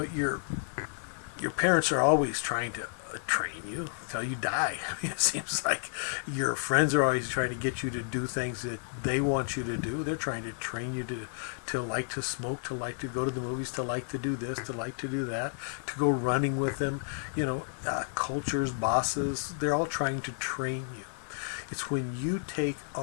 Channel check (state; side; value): silent; right; digital silence